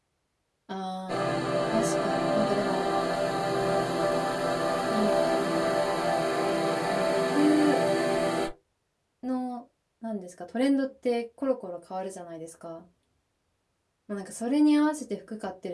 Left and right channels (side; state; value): both; identical; correlation 1.00